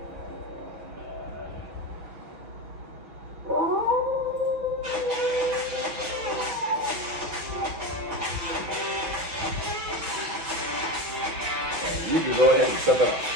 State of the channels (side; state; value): left; late; 6.4 ms